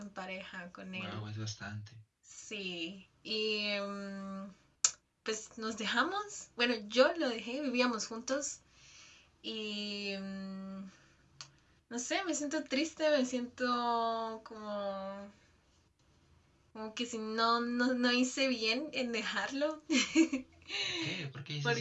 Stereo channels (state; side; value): identical; both; correlation 1.00